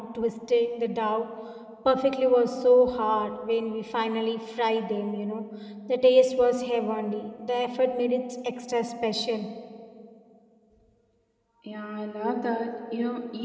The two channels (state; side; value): identical; both; correlation 1.00